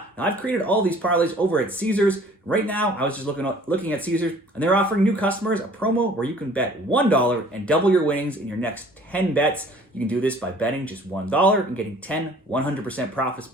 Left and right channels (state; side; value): normal; both; correlation 0.52